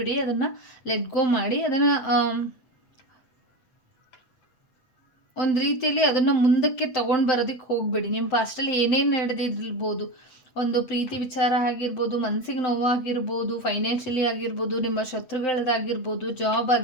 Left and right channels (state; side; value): late; right; 8.1 ms